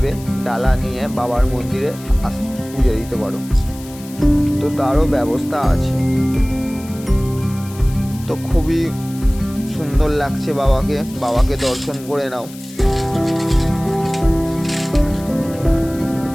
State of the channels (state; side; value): noise; left; hiss, 19 dB below the sound